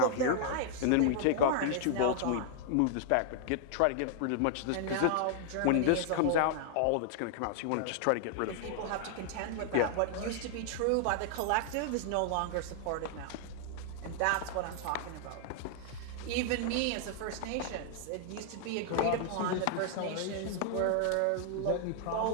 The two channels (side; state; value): both; different; correlation -0.01